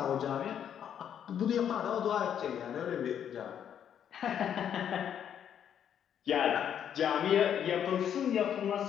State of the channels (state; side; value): quieter; right; 9.1 dB